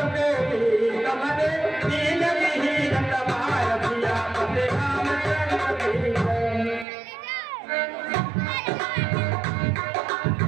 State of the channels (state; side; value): drops out; left; at 6.9 s